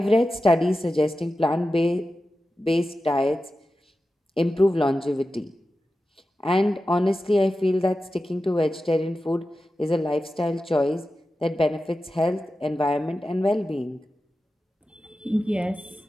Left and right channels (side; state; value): both; normal; correlation 0.93